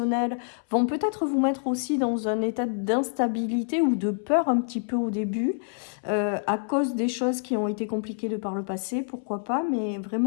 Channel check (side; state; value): right; silent; 59 dB below the other